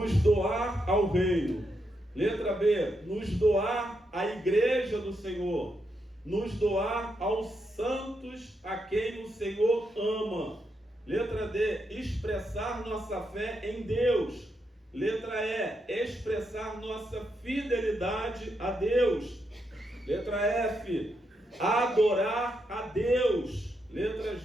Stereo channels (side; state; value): both; normal; correlation 0.82